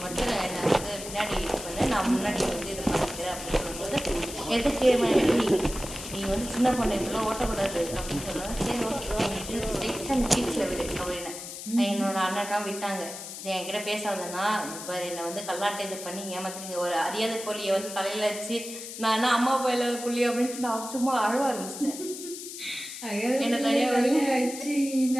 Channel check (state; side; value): noise; left; hiss, 10 dB below the sound